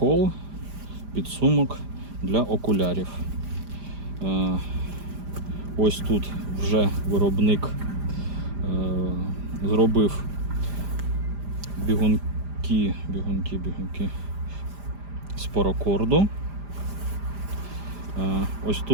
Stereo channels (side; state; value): left; late; 5.0 ms